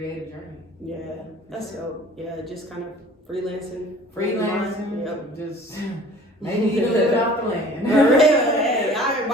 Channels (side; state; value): both; normal; correlation 0.48